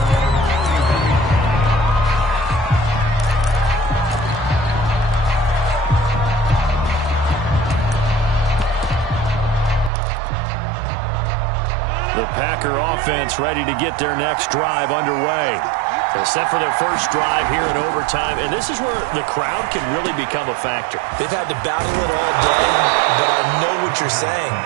The Packer offense ready to get their next drive underway. They're set for their first drive here in overtime, and this is where the crowd can really become a factor. They've had to battle it all day, but I know what you're saying.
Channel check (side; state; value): left; drops out; at 9.9 s